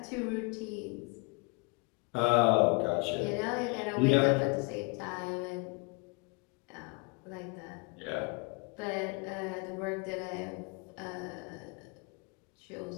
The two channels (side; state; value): right; quieter; 29.4 dB